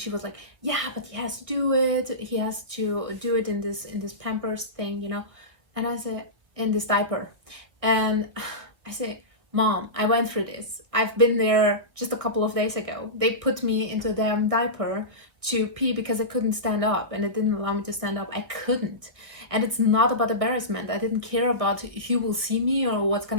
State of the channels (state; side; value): late; left; 1.4 ms